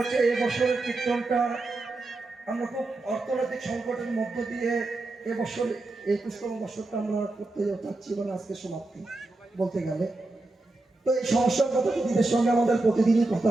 এবছরের কীর্তনটা আমরা খুব অর্থনৈতিক সংকটের মধ্য দিয়ে এবছর 21তম বছরটা আমরা করতে যাচ্ছি, মানে আজকে সমাপ্তি বলতে গেলে। তো এই সমস্যার কথা দিদিদের সঙ্গে আমাদের প্রতিদিনই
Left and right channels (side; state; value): left; quieter; 3.0 dB